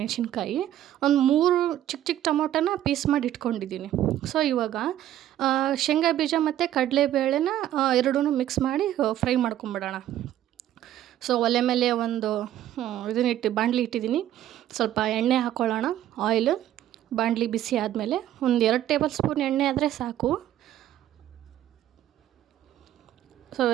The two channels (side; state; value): left; quieter; 12.2 dB